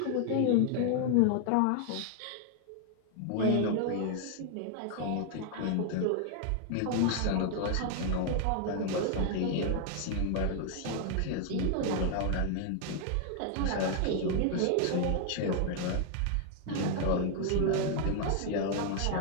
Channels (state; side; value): different; both; correlation 0.00